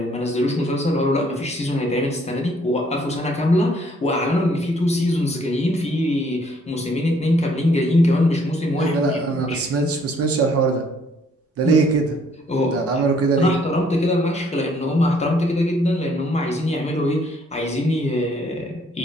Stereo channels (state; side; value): normal; both; correlation 0.64